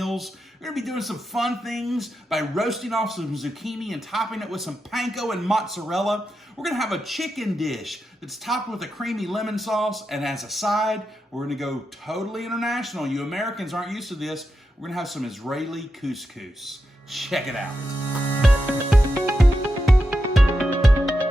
We're going to be doing some fun things by roasting off some zucchini and topping it with some panko and mozzarella. We're going to have a chicken dish that's topped with a creamy lemon sauce, and as a side, we're going to go totally international. You Americans aren't used to this. We're going to have some Israeli couscous. Check it out.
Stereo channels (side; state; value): both; normal; correlation 0.87